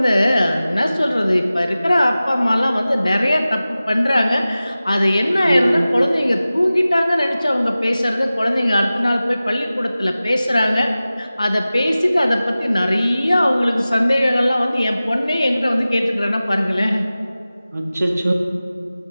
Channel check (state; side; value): inverted; both; correlation -0.96